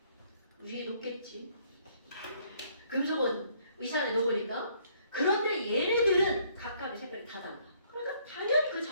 위에 놓겠지. 금속은 의사 안에 넣으니까. 그런데 얘네들은 각각의 색깔이 다 달라. 그러니까 당연히 그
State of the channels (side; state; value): both; inverted; correlation -0.65